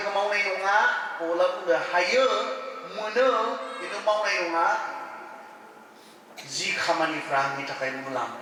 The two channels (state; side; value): identical; both; correlation 1.00